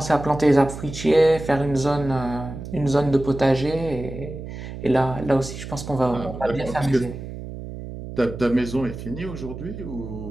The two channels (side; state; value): right; noise; hum, 10 dB below the sound